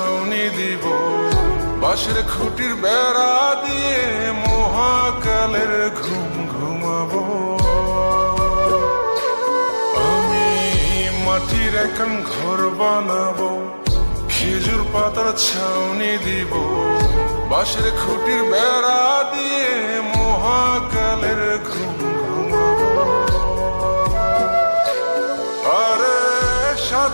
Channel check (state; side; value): inverted; both; correlation -1.00